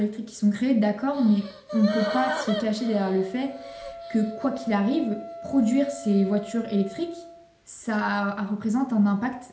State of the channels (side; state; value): both; identical; correlation 1.00